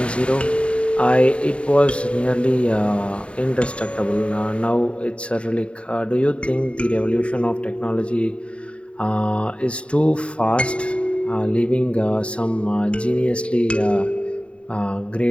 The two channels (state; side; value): late; right; 0.059 ms